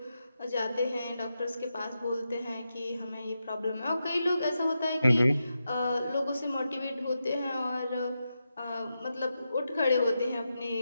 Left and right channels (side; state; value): both; inverted; correlation -0.88